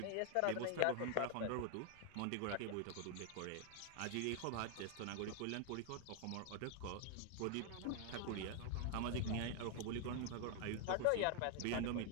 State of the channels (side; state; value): both; different; correlation 0.00